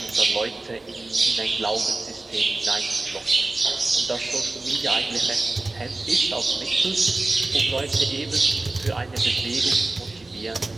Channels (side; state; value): left; quieter; 3.1 dB